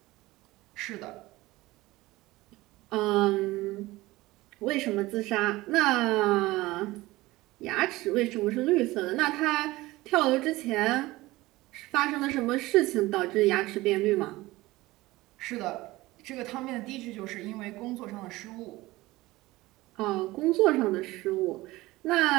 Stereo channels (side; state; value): left; quieter; 19.2 dB